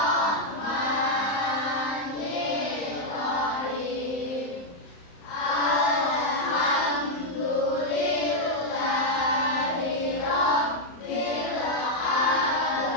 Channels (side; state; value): right; late; 34 ms